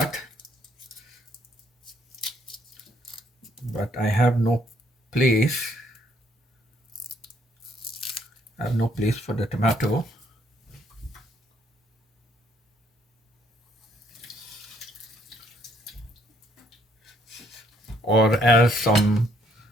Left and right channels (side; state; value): both; normal; correlation 0.67